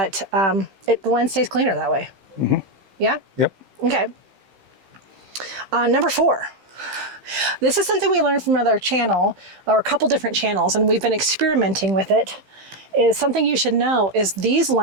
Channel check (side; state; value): left; late; 15 ms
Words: the lens stays cleaner that way. Mm-hmm. Yeah? Yep. Okay. Number 4. This is something we learned from another channel, or a couple different channels, and we've been experimenting with it. Is something you should know is these